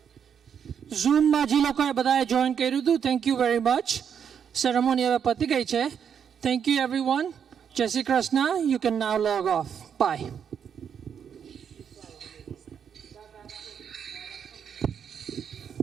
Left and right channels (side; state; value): left; quieter; 7.8 dB